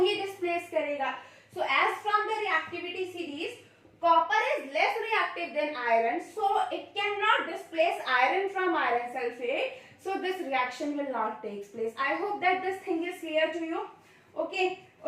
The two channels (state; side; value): identical; both; correlation 1.00